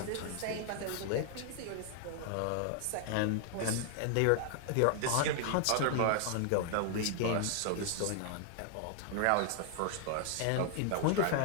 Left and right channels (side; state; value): both; different; correlation 0.00